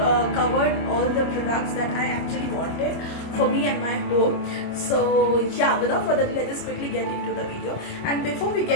covered all the products that I actually wanted for me and my home. So yeah, without further ado, let's just quickly get into the video. And before we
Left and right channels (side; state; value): right; late; 25 ms